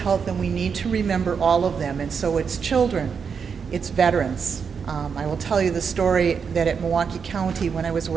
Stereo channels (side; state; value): left; quieter; 6.3 dB